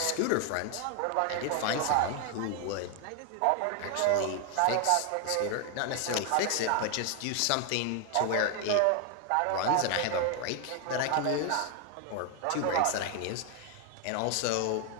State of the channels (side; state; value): both; different; correlation 0.01